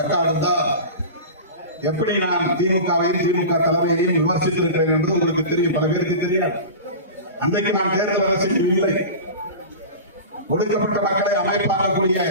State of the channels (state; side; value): inverted; both; correlation -0.30